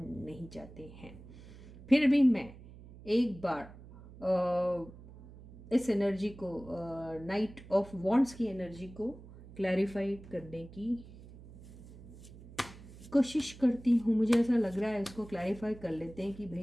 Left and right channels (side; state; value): right; noise; hum, 18 dB below the sound